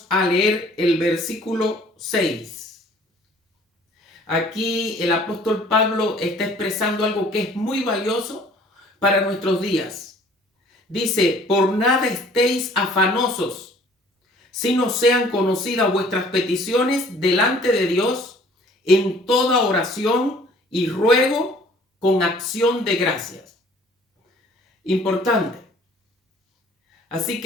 a leer el versículo 6. Aquí el apóstol Pablo está expresando algo que es muy valioso para nuestros días. Dice: por nada estéis afanosos, sino sean conocidas vuestras peticiones delante de Dios en toda oración y ruego con acción de gracias. Importante. Así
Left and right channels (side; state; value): both; normal; correlation 0.54